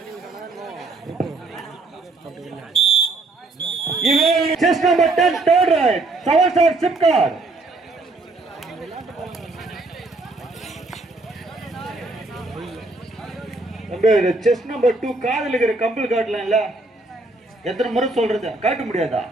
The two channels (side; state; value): left; quieter; 3.2 dB